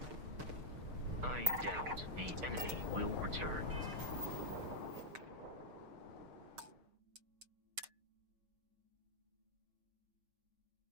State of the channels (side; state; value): left; late; 6.5 ms